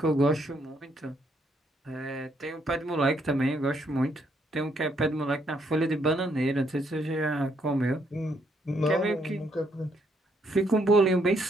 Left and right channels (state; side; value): normal; both; correlation 0.73